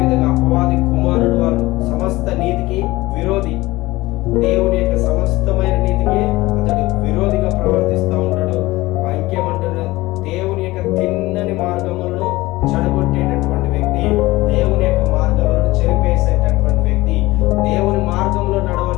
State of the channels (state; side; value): quieter; right; 19.5 dB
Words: అపవాది కుమారుడు వాడు, సమస్త నీతికి విరోధి, దేవుని యొక్క సమస్తమైన నీతికి అతడు విరోధిగా ప్రవర్తిస్తూ ఉంటాడు. ఇంకేమంటున్నాడు? దేవుని యొక్క తిన్నని మార్గములను చెడగొట్టేటటువంటి వ్యక్తి, దేవుని యొక్క మార్గములను చెరిపేసేటటువంటి వ్యక్తి, దేవుని మార్గంలో